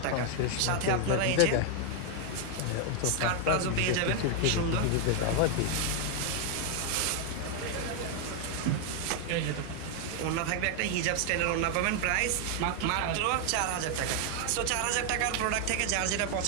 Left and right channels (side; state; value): both; different; correlation 0.00